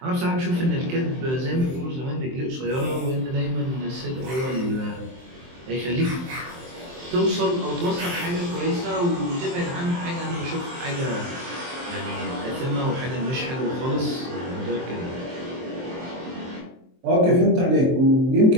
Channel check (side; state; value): left; late; 23 ms